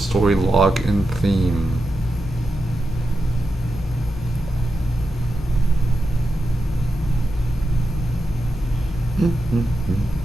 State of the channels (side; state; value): both; normal; correlation 0.89